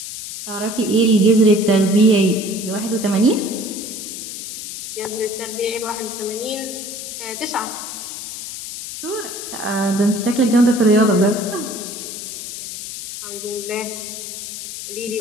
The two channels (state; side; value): noise; left; hiss, 8 dB below the sound